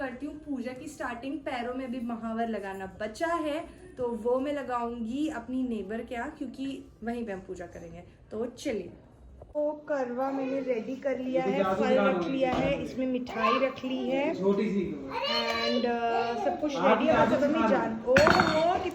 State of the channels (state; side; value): identical; both; correlation 1.00